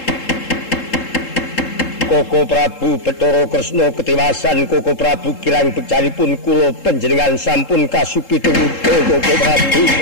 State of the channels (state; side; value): late; right; 3.7 ms